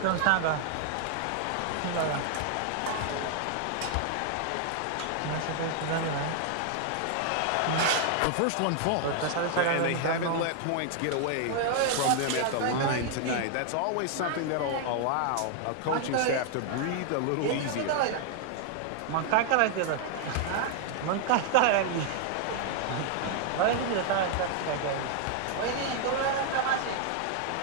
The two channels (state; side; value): different; both; correlation 0.00